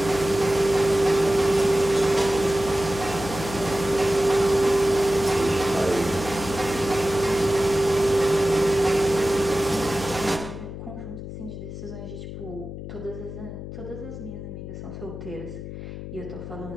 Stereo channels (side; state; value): left; noise; hum, 9 dB below the sound